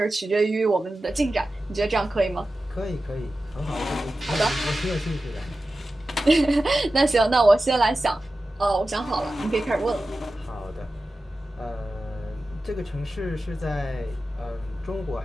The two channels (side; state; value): both; normal; correlation 0.94